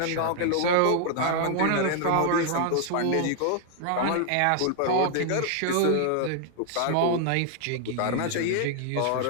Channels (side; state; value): both; different; correlation 0.00